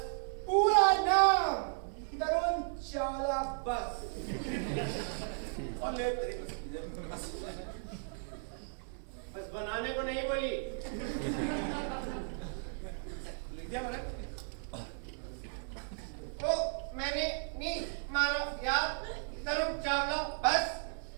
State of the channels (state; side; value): silent; left; digital silence